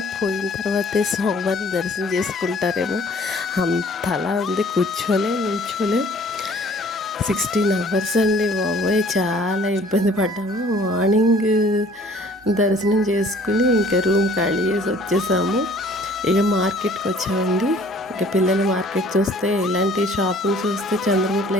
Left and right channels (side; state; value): both; normal; correlation 0.54